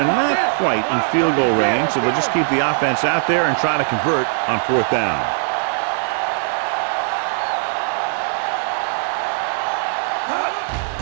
not quite in field goal range, so they'll just keep the offense out there and try to convert on 4th down.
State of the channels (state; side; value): silent; left; 66 dB below the other